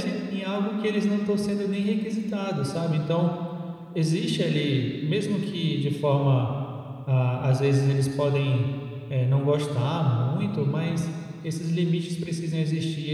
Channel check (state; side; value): identical; both; correlation 1.00